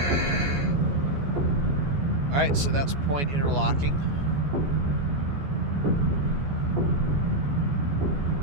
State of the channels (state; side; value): late; left; 14 ms